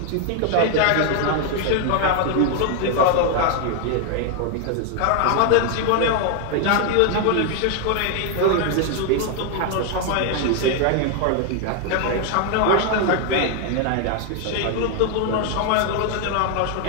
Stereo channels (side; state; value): both; different; correlation 0.00